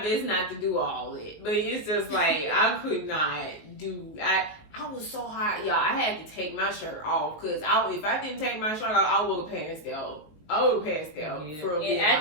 best not to do all it. But it's just like, I could not do, I was so hot, y'all. I had to take my shirt off, because if I didn't take my shirt off, I would have passed out. I would have passed out for a bit.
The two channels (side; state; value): right; late; 19 ms